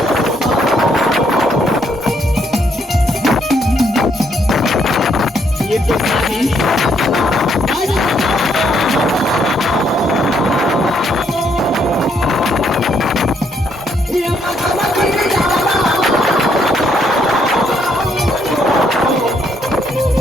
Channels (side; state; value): both; normal; correlation 0.72